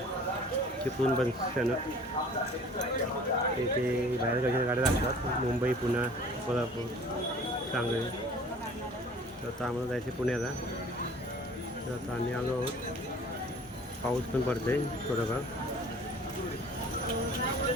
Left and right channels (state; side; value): normal; both; correlation 0.48